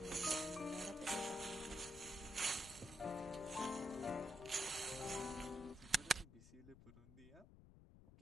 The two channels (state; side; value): noise; left; rumble, 18 dB below the sound